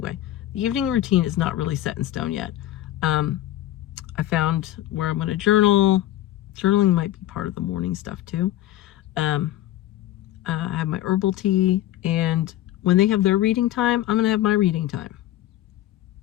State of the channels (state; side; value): quieter; right; 13.8 dB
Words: the evening routine is not really set in stone yet. I found where I'm going to journal. Journaling might be part of the morning stuff too. I have my herbal tea, And when they have their reading time, I'm going to have my reading time.